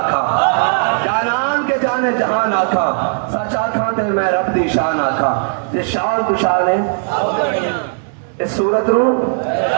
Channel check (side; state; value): left; silent; 69 dB below the other